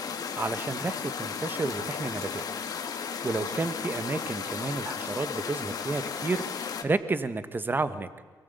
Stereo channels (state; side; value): normal; both; correlation 0.63